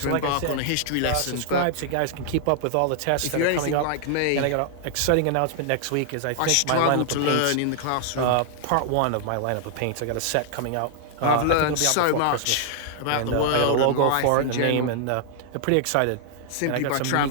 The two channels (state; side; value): different; both; correlation 0.00